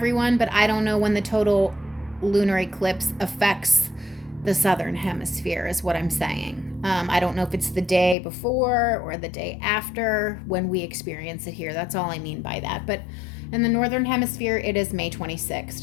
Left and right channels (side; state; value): right; drops out; at 8.2 s